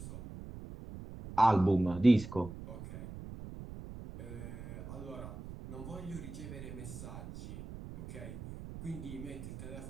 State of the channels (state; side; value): noise; right; rumble, 11 dB below the sound